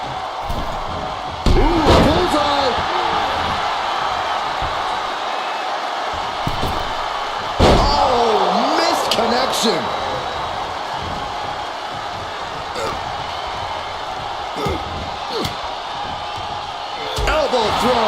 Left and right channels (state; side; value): identical; both; correlation 1.00